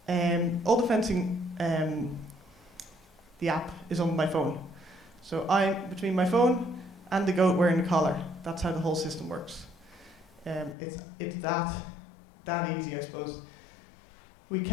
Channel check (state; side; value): drops out; right; at 10.8 s